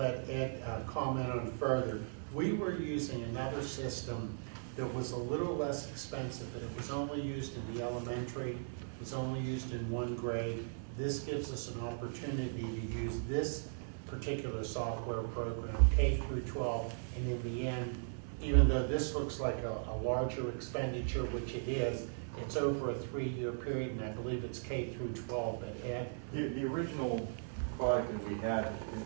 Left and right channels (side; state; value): left; silent; 53 dB below the other